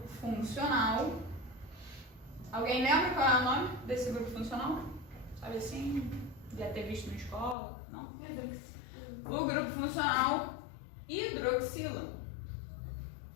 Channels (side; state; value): right; drops out; at 7.6 s